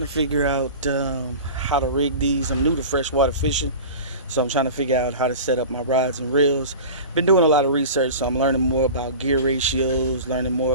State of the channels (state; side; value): inverted; both; correlation -0.35